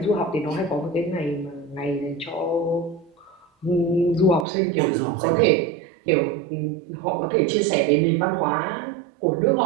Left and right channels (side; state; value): left; drops out; at 4.5 s